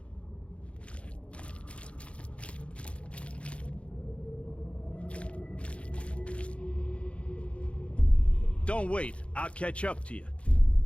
Don't wait. I'll catch up to you.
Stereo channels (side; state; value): right; late; 0.061 ms